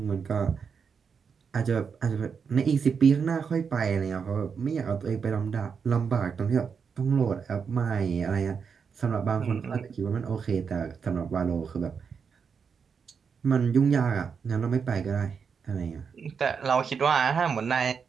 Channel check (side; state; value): left; quieter; 6.1 dB